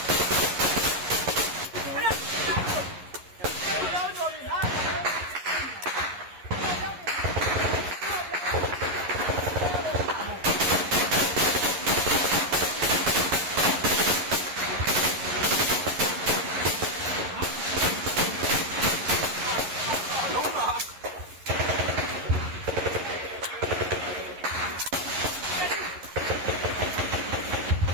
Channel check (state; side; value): late; left; 11 ms